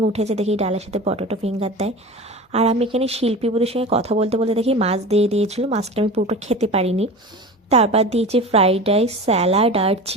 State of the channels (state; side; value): normal; both; correlation 0.32